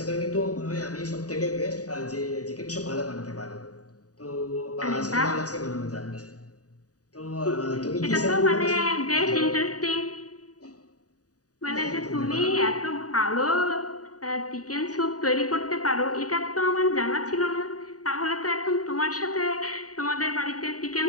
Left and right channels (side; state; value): right; late; 0.67 ms